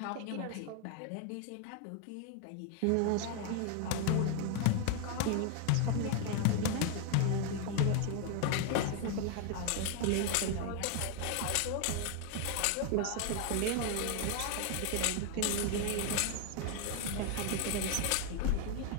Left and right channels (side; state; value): both; different; correlation 0.01